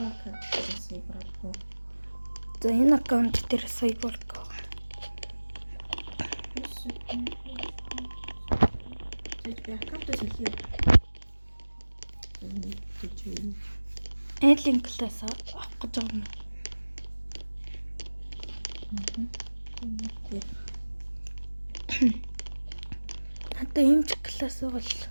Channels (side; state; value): both; inverted; correlation -1.00